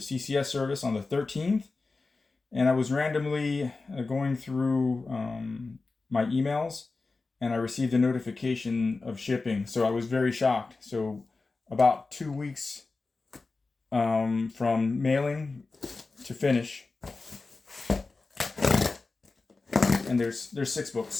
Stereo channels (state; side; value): quieter; right; 3.8 dB